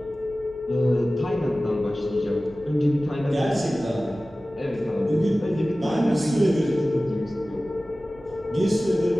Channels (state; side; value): noise; left; hum, 29 dB below the sound